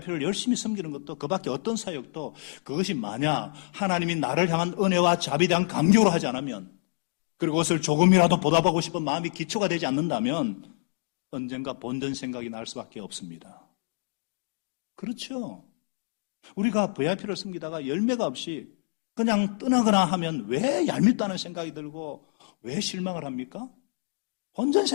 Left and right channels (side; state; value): right; silent; 60 dB below the other